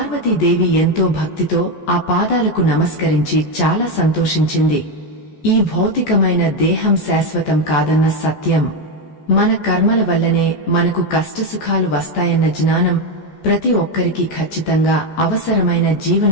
ఎంతో భక్తితో ఆ పాదాలకు నమస్కరించి చాలా సంతోషించింది. ఈ భౌతికమైన దేహం శాశ్వతం కాదన్న సత్యం, మన కర్మల వల్లనే మనకు కష్టసుఖాలు వస్తాయన్న జ్ఞానం ప్రతి ఒక్కరికి ఖచ్చితంగా అవసరమైన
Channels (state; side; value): late; right; 14 ms